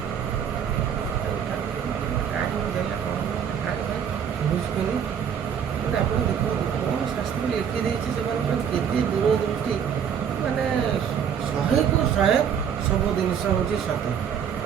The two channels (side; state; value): left; quieter; 8.1 dB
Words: କାହିଁକି ଦେଲା କ'ଣ ବୁଝୁଛନ୍ତି ମାନେ ଆପଣ ଦେଖନ୍ତୁ କ'ଣ ଶାସ୍ତ୍ର ଲେଖି ଦେଇଛି ସେମାନଙ୍କର କେତେ ଦୂରଦୃଷ୍ଟି ମାନେ 100କୁ 100 ସବୁ ଜିନିଷ ହେଉଛି ସତ୍ୟ